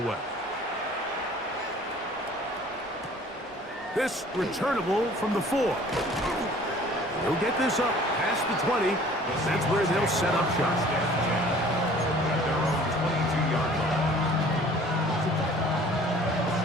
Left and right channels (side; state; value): both; normal; correlation 0.51